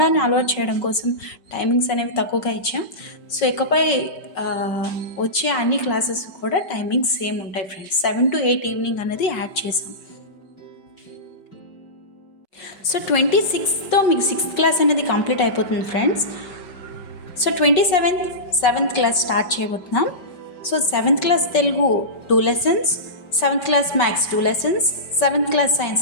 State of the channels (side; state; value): right; late; 5.2 ms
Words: అలవాటు చేయడం కోసం టైమింగ్స్ అనేవి తక్కువగా ఇచ్చాం. సో ఇకపై వచ్చే అన్ని క్లాసెస్ కూడా టైమింగ్స్ సేమ్ ఉంటాయి ఫ్రెండ్స్. 7 to 8 ఈవినింగ్ అనేది యాడ్ చేసాం. సో 26తో మీకు 6th క్లాస్ అనేది కంప్లీట్ అయిపోతుంది friends. So 27th 7th class start చేయబోతున్నాం. So 7th class Telugu 2 lessons, 7th class maths 2 lessons, 7th class science